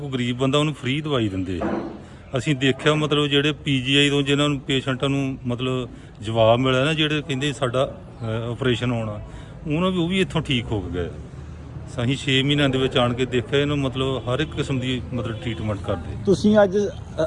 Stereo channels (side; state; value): both; identical; correlation 1.00